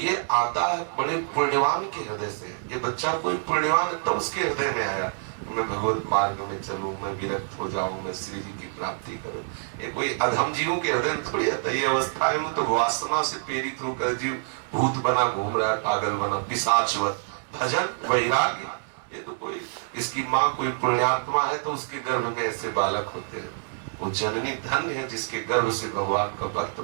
आता है बड़े पुण्यवान के हृदय से। ये बच्चा कोई पुण्यवान है तो उसके हृदय में आया, मैं भगवत मार्ग में चलूं, मैं विरक्त हो जाऊं, मैं श्री जी की प्राप्ति करूं। ये कोई अधम जीवों के हृदय में थोड़ी आता है। ये अवस्थाएं में तो वासना से प्रेरित होकर जीव भूत बना घूम रहा है, पागल बना, पिशाचवत। भजन वैराग्य, ये तो कोई, इसकी माँ कोई पुण्यात्मा है तो उसके गर्भ में ऐसे बालक होते हैं। वो जननी धन्य है जिसके गर्भ से भगवान का भक्त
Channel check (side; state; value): left; silent; digital silence